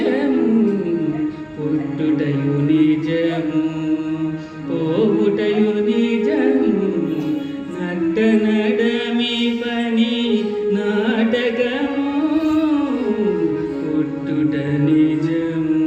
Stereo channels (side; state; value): both; identical; correlation 1.00